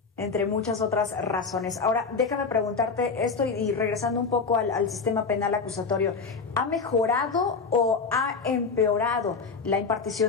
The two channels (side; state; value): right; quieter; 4.9 dB